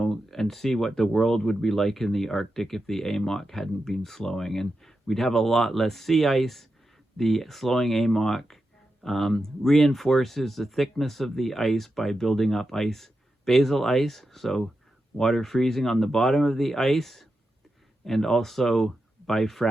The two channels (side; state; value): both; normal; correlation 0.89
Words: see what the world would be like in the Arctic if the AMOC hadn't been slowing. And we'd have a lot less sea ice. The slowing AMOC reinforces the thickness of the ice by building up basal ice, so water freezing on the bottom of the ice, and also